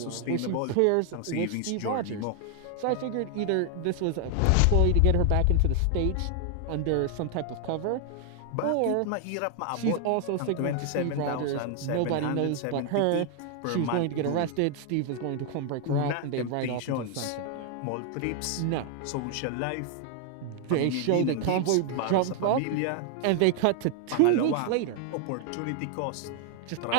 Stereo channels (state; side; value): different; both; correlation 0.00